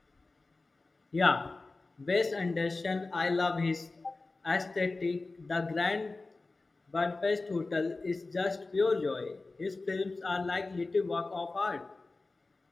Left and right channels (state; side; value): quieter; right; 3.4 dB